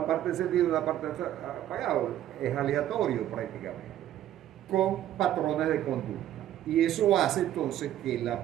parte encendida y una parte apagada. Es aleatorio prácticamente, con patrones de conducta. Y eso hace entonces que la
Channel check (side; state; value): left; quieter; 12.1 dB